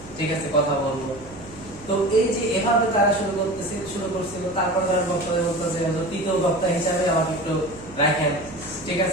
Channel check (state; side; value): noise; left; hum, 20 dB below the sound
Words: ঠিক আছে, কথা বলবো। তো এই যে এভাবে তারা শুরু করছিল, তারপরে ধরেন বক্তাদের বলতো যে তৃতীয় বক্তা হিসাবে আমাকে একটু রাখেন, ঠিক